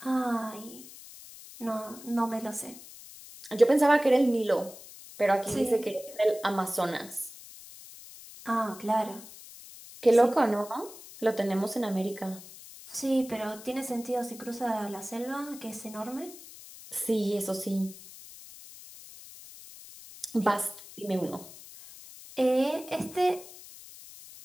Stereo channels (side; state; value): left; noise; hiss, 17 dB below the sound